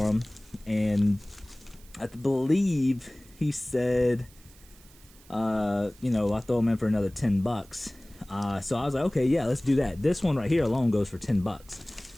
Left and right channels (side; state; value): right; noise; hiss, 25 dB below the sound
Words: them, and I believe he said, you know, I throw them in for another 10 bucks. So I was like, okay, yeah, let's do that. This one right here alone goes for 10 bucks.